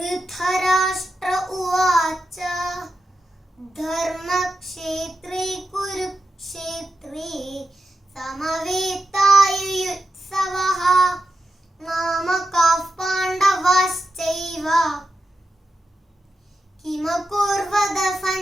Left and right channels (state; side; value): normal; both; correlation 0.89